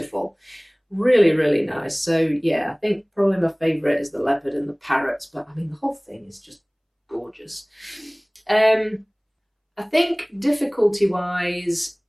Really, really nice. So yeah, I think probably my favourite is the leopard and the parrots, but I mean the whole thing is just gorgeous. I think difficulty-wise,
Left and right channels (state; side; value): identical; both; correlation 1.00